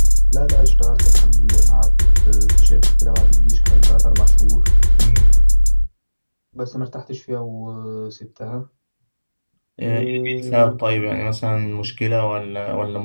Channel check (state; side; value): inverted; both; correlation -1.00